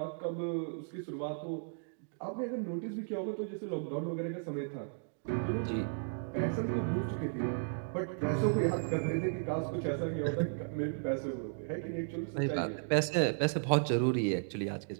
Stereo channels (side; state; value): left; silent; digital silence